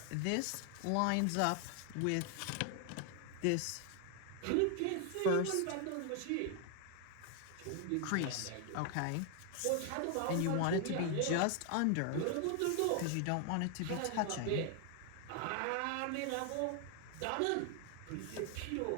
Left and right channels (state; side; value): different; both; correlation 0.00